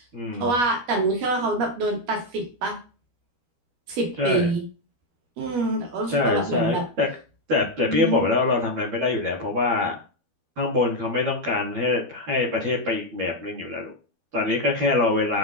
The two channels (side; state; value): left; late; 12 ms